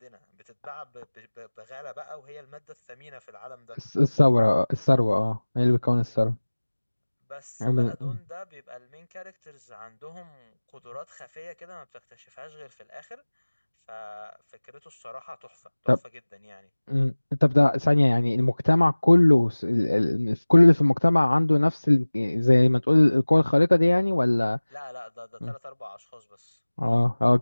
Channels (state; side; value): inverted; both; correlation -1.00